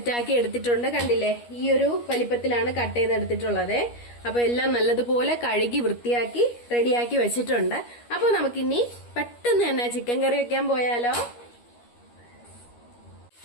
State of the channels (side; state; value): right; late; 13 ms